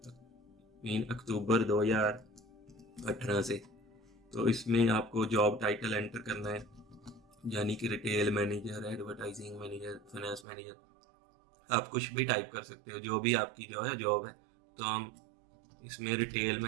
अक्टूबर 2018 से। तो इसमें आपको जॉब टाइटल एंटर करना है यानी कि retail manager, advertising manager, finance manager, आप कुछ भी टाइप कर सकते हो जो भी आपकी जो है जॉब है। तो हम इसमें रिटेल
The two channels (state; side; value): drops out; left; at 10.5 s